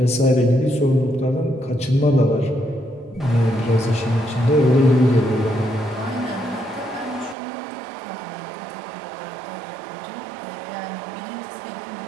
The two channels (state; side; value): drops out; left; at 7.4 s